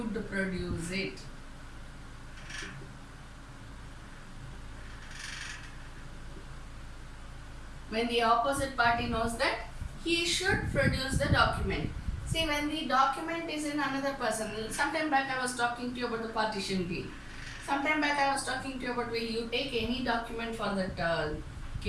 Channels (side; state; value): both; identical; correlation 1.00